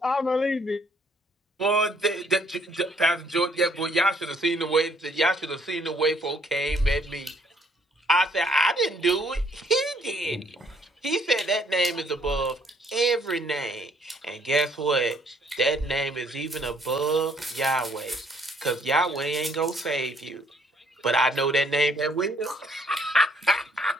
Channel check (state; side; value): normal; both; correlation 0.65